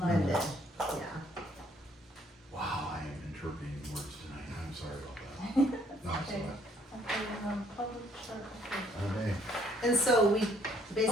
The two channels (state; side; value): normal; both; correlation 0.66